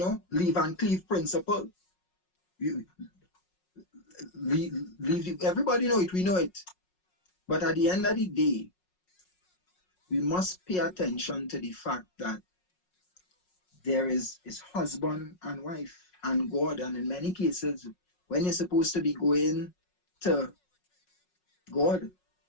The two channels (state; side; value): late; right; 5.5 ms